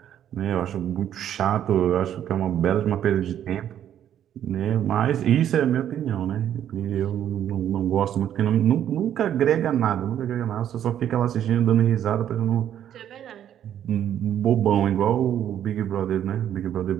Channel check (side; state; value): left; quieter; 10.3 dB